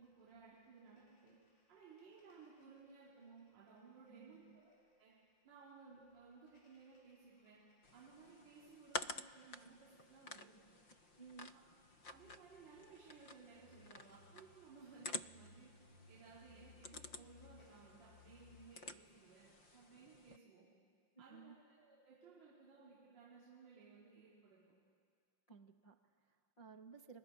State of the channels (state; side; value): late; right; 5.7 ms